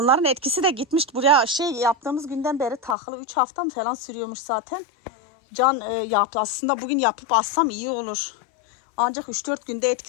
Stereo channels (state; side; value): drops out; right; at 3.0 s